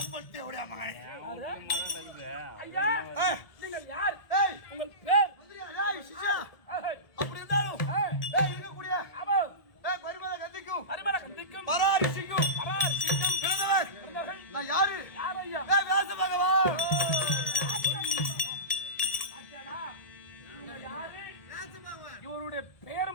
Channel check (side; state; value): right; late; 1.8 ms